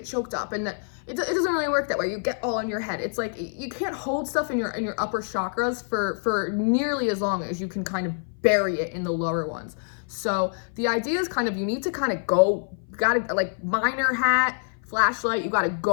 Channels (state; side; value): silent; right; 57 dB below the other